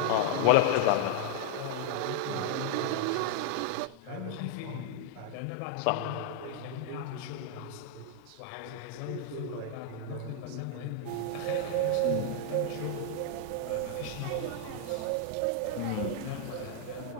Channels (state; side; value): different; both; correlation 0.00